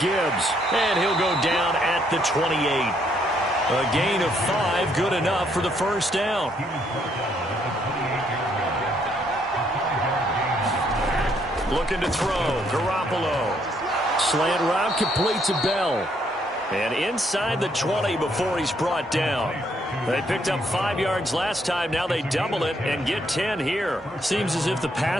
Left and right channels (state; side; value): normal; both; correlation 0.71